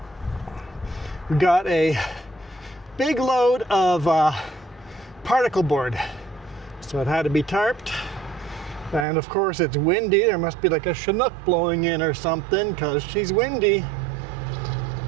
We got a big load of particle board. So it had to be tarped. And of course it's windy. There must be like a Chinook blowing in or something because she's windy.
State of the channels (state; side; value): drops out; left; at 9.1 s